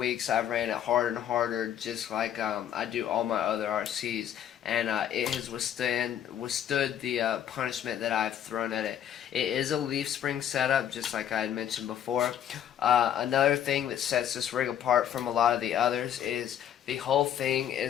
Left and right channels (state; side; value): quieter; right; 10.0 dB